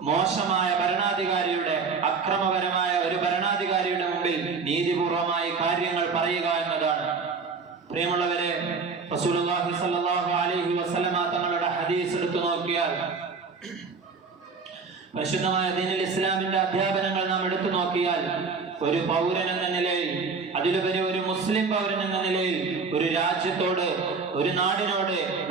മോശമായ ഭരണാധികാരിയുടെ, അക്രമപരമായ ഒരു ഭരണാധികാരിയുടെ മുമ്പിൽ നീതിപൂർവമായി കാര്യങ്ങൾ പറയുക എന്നതാണ്. പ്രിയമുള്ളവരെ, റസൂലുള്ളാഹി സ്വല്ലല്ലാഹു അലൈഹി വസല്ലമ തങ്ങളുടെ ഹദീസ് എടുത്തു നോക്കിയാൽ, പരിശുദ്ധമായ ദീനുൽ ഇസ്ലാമിന്റെ അധ്യാപനങ്ങൾ നാം എടുത്തു നോക്കിയാൽ, ഒരു പൗരൻ എന്ന നിലയിൽ, അതിലുപരി ഒരു മുസ്ലിം പൗരൻ എന്ന നിലയിൽ ഒരു രാജ്യത്തോട്, ഒരു നാടിനോട്,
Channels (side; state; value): left; quieter; 4.8 dB